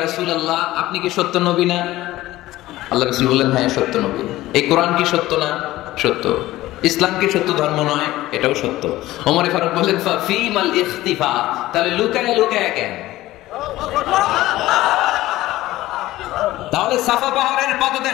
রাসূলুল্লাহ, আপনি কি সত্য নবী না? আল্লাহ রাসূল বললেন, হ্যাঁ সত্য নবী। এই কোরআন কি সত্য না? সত্য। ইসলাম কি সত্য ধর্ম নয়? এটাও সত্য। ওমর ফারুক বললেন, ফাফিমাল ইখতিফা, তাহলে লুকায় লুকায় কেন? তাহলে সাফা পাহাড়ের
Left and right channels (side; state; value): right; quieter; 16.5 dB